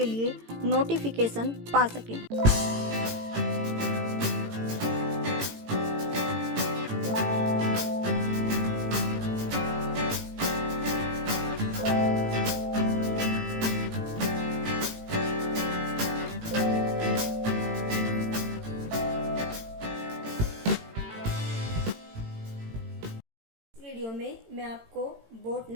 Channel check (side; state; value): left; late; 18 ms